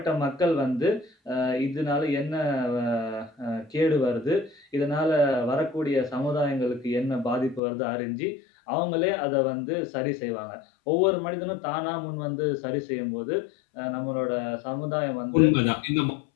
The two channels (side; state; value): right; drops out; at 7.6 s